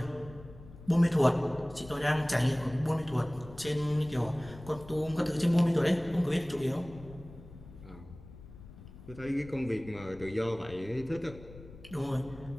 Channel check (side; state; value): left; noise; rumble, 17 dB below the sound